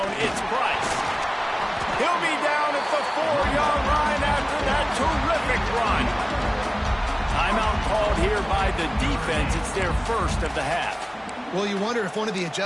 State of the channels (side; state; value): both; identical; correlation 1.00